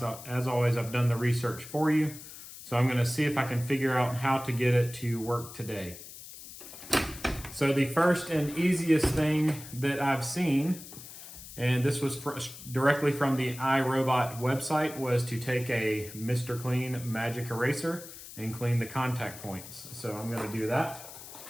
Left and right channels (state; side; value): noise; left; hiss, 14 dB below the sound